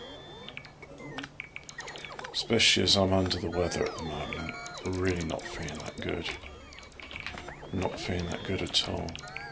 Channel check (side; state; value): both; identical; correlation 1.00